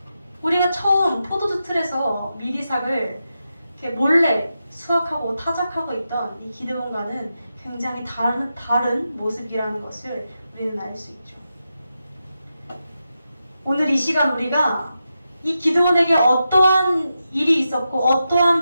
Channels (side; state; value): both; inverted; correlation -0.89